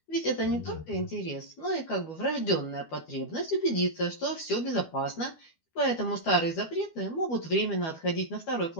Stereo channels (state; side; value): late; right; 12 ms